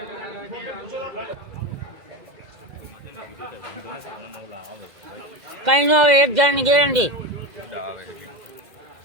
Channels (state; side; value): late; left; 2.0 ms